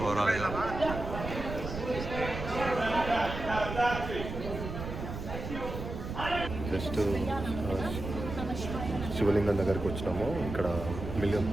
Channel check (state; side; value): noise; right; rumble, 7 dB below the sound